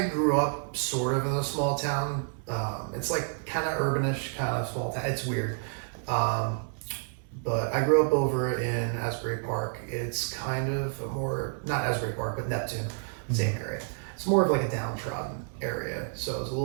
grew up sort of in a small town. It's like kind of urbanish, kind of small town. It's weird. But I grew up over in Asbury Park. It's kind of a more, not Asbury Park, but Neptune, same area. It's more of like a downtrodden area, so it's a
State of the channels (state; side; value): silent; left; 58 dB below the other